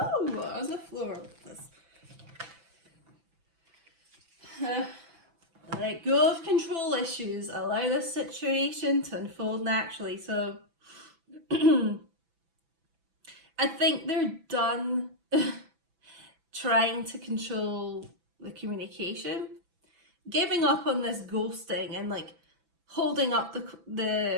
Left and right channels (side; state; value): left; late; 6.0 ms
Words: on the floor with this. Let go of control issues. Allow this situation to unfold naturally. So I think they're done trying to control the communication, giving up on this ghosting and like holding up